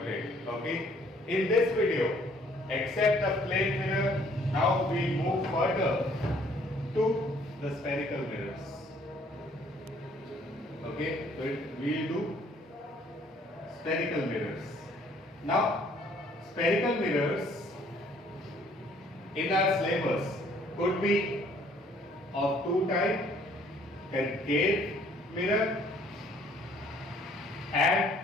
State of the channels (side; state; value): both; normal; correlation 0.61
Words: Okay. In this video, except the plane mirror, now we move further to the spherical mirrors. Okay, so we will do spherical mirrors. Now, spherical mirrors in our syllabus could be of two types: concave mirror